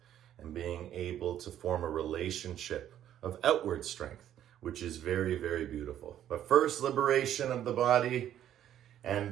and being able to form a relationship of outward strength, which is very, very beautiful. But first, liberation of the body,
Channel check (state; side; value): quieter; left; 11.1 dB